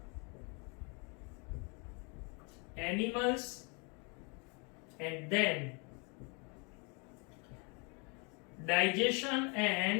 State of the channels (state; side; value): quieter; right; 32.9 dB